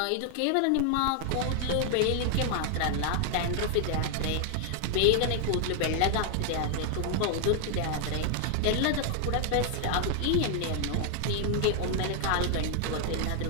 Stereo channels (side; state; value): both; different; correlation 0.00